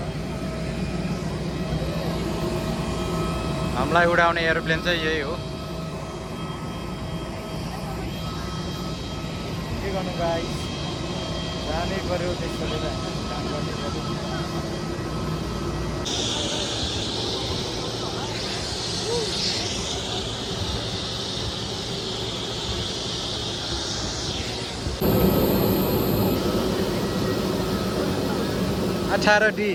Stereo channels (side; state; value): both; identical; correlation 1.00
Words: हामीलाई उडाउने एरोप्लेन चाहिँ यही हो। के गर्नु गाइस, जानै पर्यो, त्यसले काम गर्नै पर्यो। अठार डी